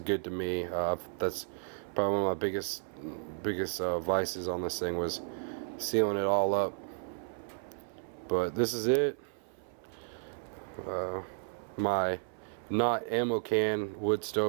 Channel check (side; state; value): left; silent; 56 dB below the other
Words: good to me. That's probably one of my biggest vices on this thing, was sealing it all up. But this is it. My not ammo can wood